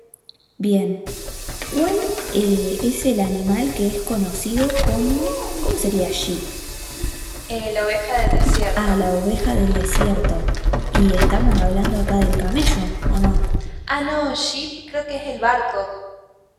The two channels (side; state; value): both; identical; correlation 1.00